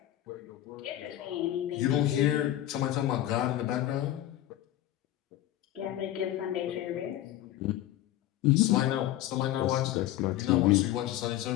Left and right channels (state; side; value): quieter; right; 13.7 dB